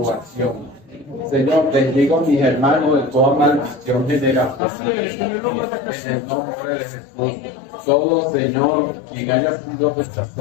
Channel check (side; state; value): right; drops out; at 4.6 s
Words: Señor, bendigo a mis hermanos de toda maldición generacional. En el nombre de Jesús. Todo, Señor, quien haya sido